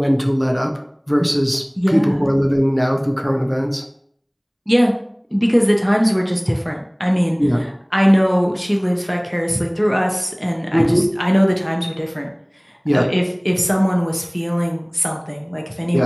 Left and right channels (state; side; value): identical; both; correlation 1.00